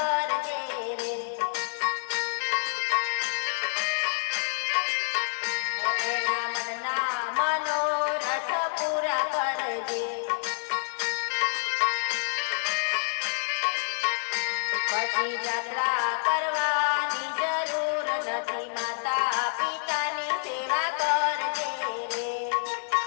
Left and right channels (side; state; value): right; silent; 59 dB below the other